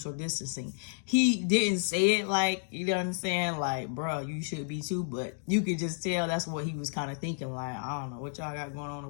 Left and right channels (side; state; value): right; silent; digital silence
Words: distancing. He didn't say it like, you know what I'm saying? Like, bro, you should be too, but you could just tell that's what he was kind of thinking. Like, I don't know what y'all got going on